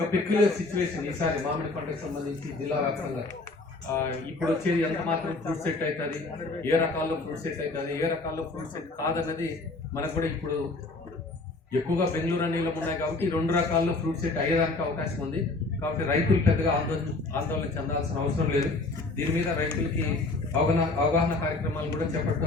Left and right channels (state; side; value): quieter; right; 3.3 dB